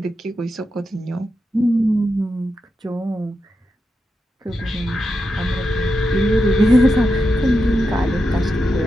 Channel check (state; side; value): normal; both; correlation 0.87